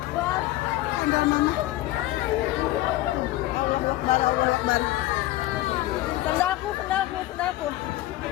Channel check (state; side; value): quieter; right; 16.5 dB